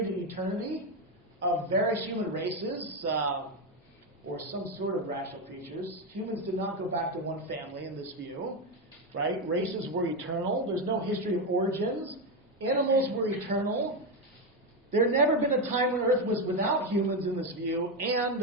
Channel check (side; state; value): both; normal; correlation 0.09